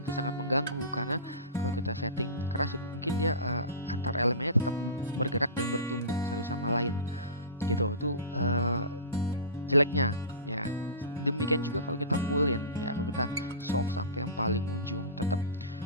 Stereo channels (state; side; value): inverted; both; correlation -0.31